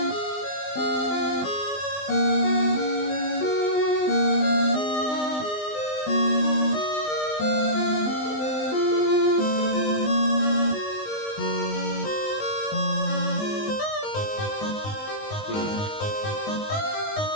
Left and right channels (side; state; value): right; late; 20 ms